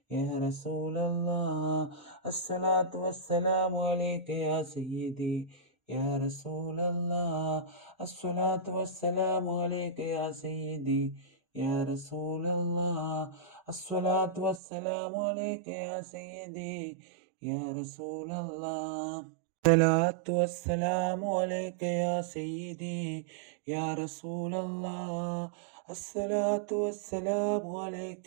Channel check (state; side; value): drops out; left; at 14.6 s